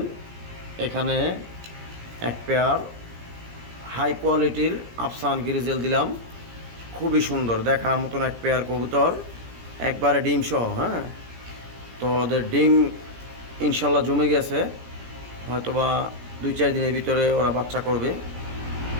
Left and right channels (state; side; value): late; left; 17 ms